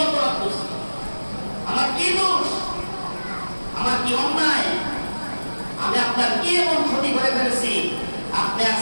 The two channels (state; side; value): inverted; both; correlation -1.00